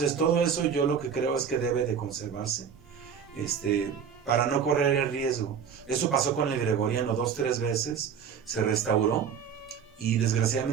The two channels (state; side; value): quieter; left; 7.3 dB